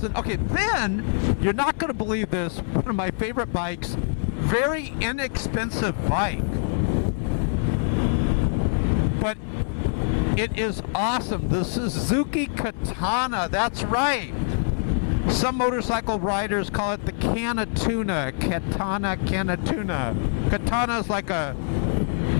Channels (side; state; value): right; silent; 61 dB below the other